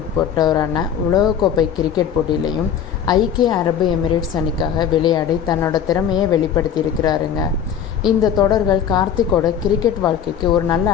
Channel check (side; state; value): right; quieter; 8.5 dB